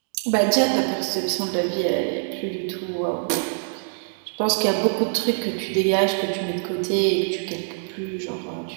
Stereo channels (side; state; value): left; silent; digital silence